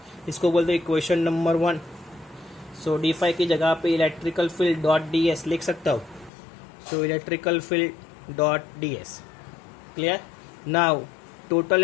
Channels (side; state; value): right; drops out; at 6.3 s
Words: इसको बोलते हैं इक्वेशन नंबर 1. सो d phi की जगह पे इलेक्ट्रिकल फील्ड डॉट ds लिख सकता हूँ. सो electrical field dot ds, clear? Now total